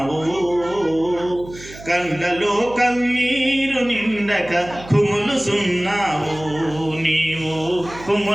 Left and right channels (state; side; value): noise; right; hum, 17 dB below the sound